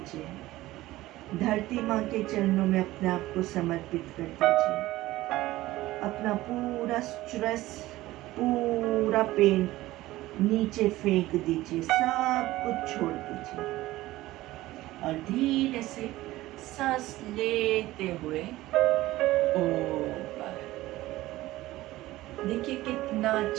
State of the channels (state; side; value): quieter; left; 17.1 dB